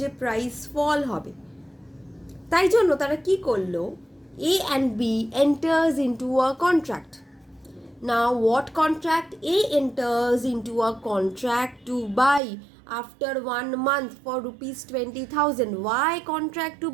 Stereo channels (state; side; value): drops out; left; at 12.4 s